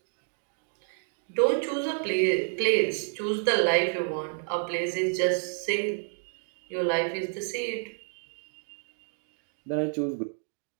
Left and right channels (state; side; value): silent; left; 58 dB below the other